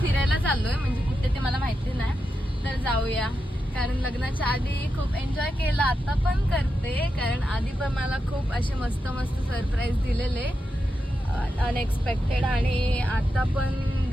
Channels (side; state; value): both; normal; correlation 0.88